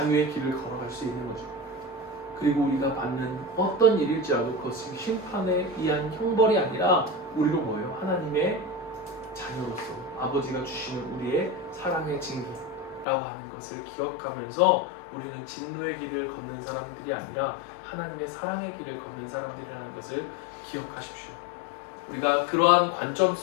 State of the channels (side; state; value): right; drops out; at 13.1 s